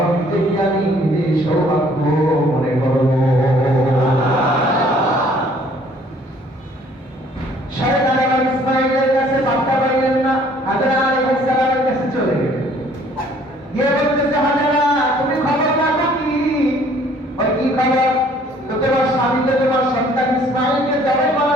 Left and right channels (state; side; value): normal; both; correlation 0.58